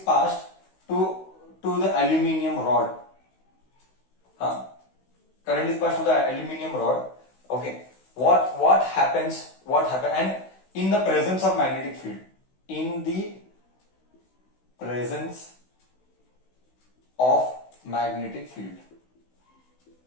passed to the aluminium rod, current is passed to the aluminium rod. Okay, what happens? And in the presence of magnetic field, in the presence of magnetic field.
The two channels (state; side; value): late; right; 16 ms